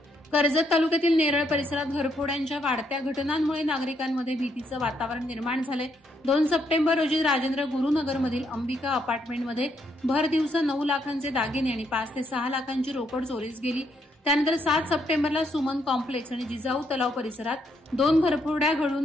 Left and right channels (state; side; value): normal; both; correlation 0.75